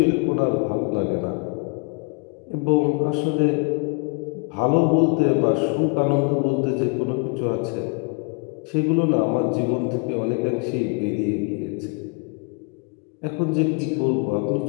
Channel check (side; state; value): right; quieter; 32.0 dB